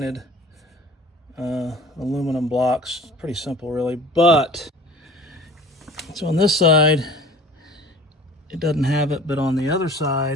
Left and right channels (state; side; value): normal; both; correlation 0.45